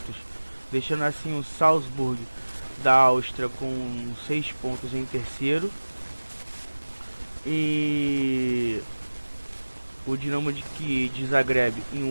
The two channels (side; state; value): both; inverted; correlation -1.00